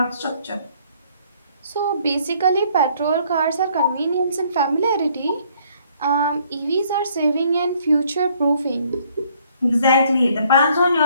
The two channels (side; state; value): both; inverted; correlation -0.64